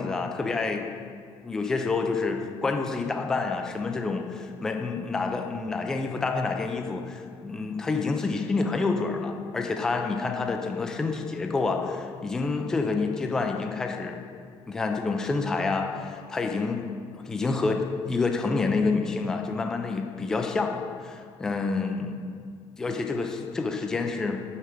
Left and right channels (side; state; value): right; quieter; 3.6 dB